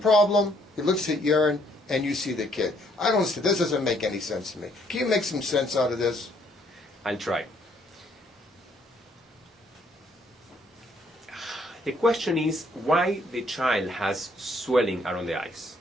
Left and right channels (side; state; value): both; normal; correlation 0.67